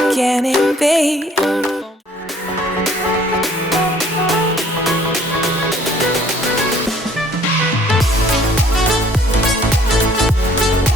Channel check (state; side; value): normal; both; correlation 0.58